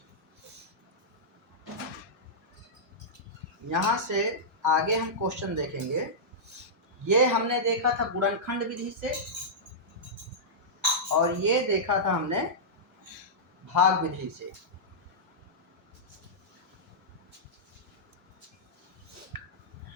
यहाँ से आगे हम क्वेश्चन देखेंगे। ये हमने देखा था गुणनखंड विधि से, और ये देखा था हमने भाग विधि से।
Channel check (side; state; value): both; normal; correlation -0.13